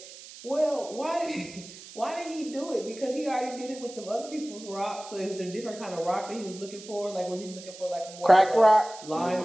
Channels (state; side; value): noise; right; hiss, 16 dB below the sound